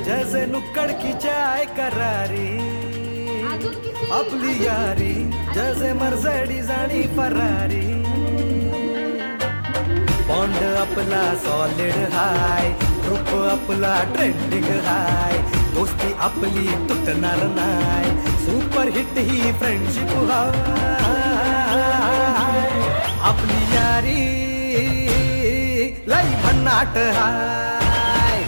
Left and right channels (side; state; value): both; inverted; correlation -1.00